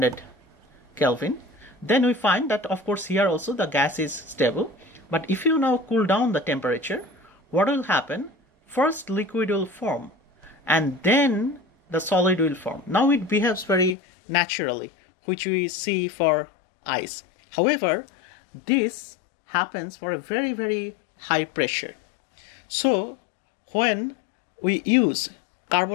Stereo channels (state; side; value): drops out; right; at 14.0 s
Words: Kelvin, then we find that of course here also the gas is stable. But if you now cool down the temperature, what will happen? First liquid will form and then the solid will form. Now it behaves very naturally, which we see for ice. However, this happens for a very, very high pressure. So when we use